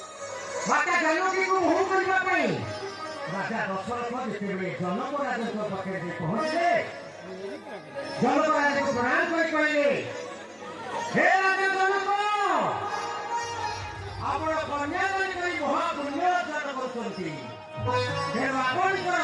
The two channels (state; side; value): identical; both; correlation 1.00